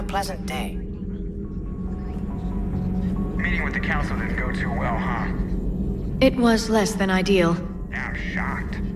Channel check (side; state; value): both; identical; correlation 1.00